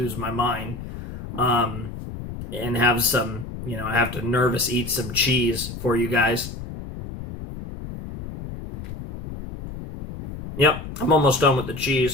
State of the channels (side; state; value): left; noise; rumble, 10 dB below the sound